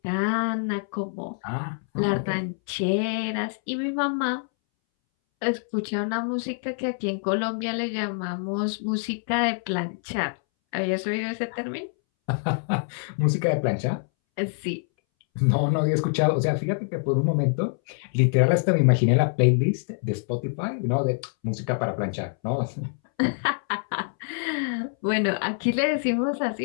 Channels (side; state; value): right; silent; 61 dB below the other